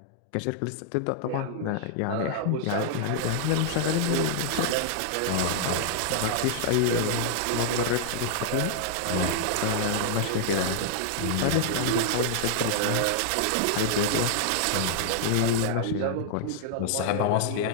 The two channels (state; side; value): different; both; correlation -0.01